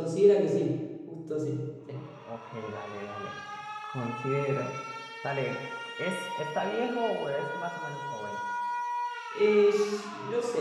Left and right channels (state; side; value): identical; both; correlation 1.00